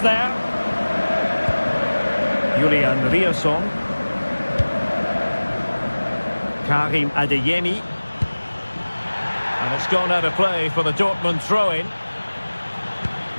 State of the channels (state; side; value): inverted; both; correlation -1.00